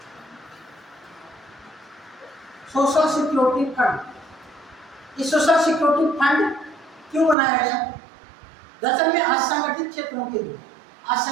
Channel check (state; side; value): drops out; left; at 7.4 s